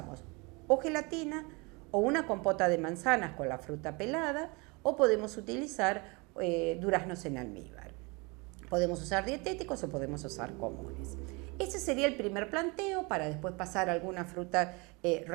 o gelatina o una compota de manzanas con la fruta pelada, o podemos utilizar duraznos en almíbar. Podemos usar dietéticos o podemos usar comunes. Ese sería el primer planteo para después pasar a alguna fruta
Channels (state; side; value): quieter; left; 28.1 dB